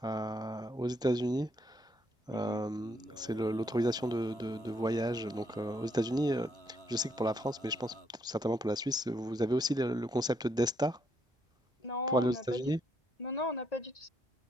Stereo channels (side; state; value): both; normal; correlation 0.73